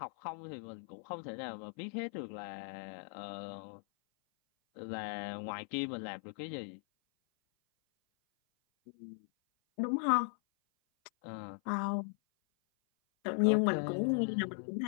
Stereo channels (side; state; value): right; silent; 52 dB below the other